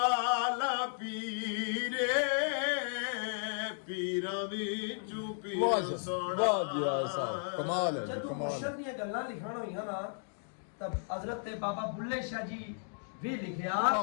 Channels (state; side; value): silent; right; digital silence